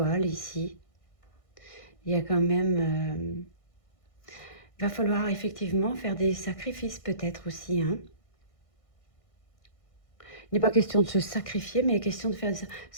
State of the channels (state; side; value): late; right; 1.6 ms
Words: ici. Il y a quand même... va falloir effectivement faire des sacrifices peut-être aussi, hein. Il n'est pas question de se sacrifier, mais il est question de faire